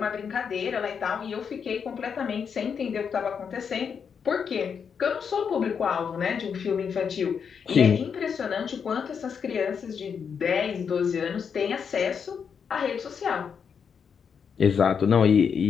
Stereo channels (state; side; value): quieter; right; 6.7 dB